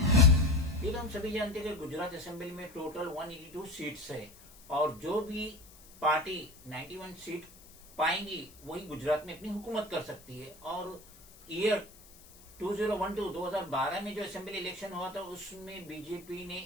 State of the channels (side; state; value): left; noise; hiss, 23 dB below the sound